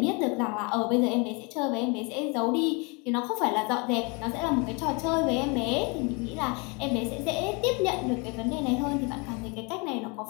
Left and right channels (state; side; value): quieter; right; 30.8 dB